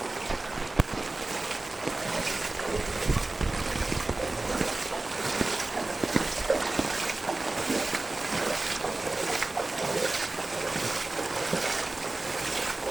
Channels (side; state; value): left; quieter; 3.0 dB